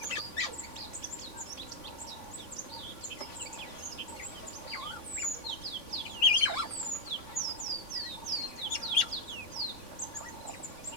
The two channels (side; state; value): right; late; 3.5 ms